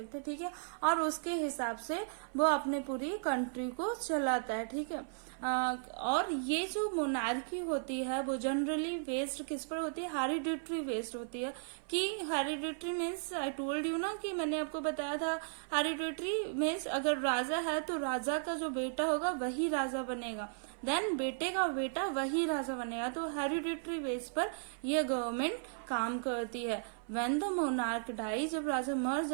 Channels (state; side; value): silent; left; 54 dB below the other